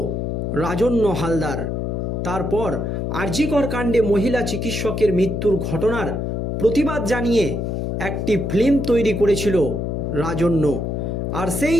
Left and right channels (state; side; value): noise; left; hum, 2 dB below the sound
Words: রাজন্য হালদার। তারপর আরজিকর কাণ্ডে মহিলা চিকিৎসকের মৃত্যুর ঘটনার প্রতিবাদ জানিয়ে একটি ফিল্ম তৈরি করেছিল রাজন্য। আর সেই